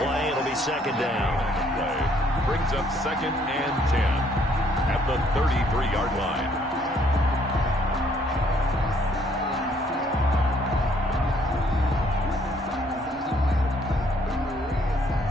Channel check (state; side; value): normal; both; correlation 0.65